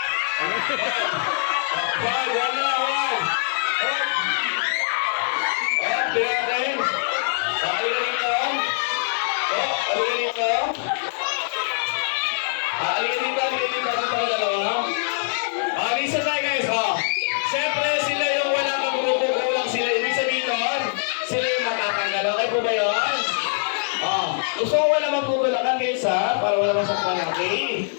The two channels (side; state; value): right; silent; 56 dB below the other